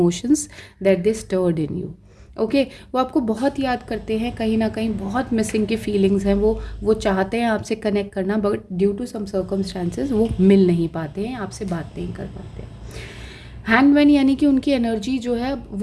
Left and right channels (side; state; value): both; identical; correlation 1.00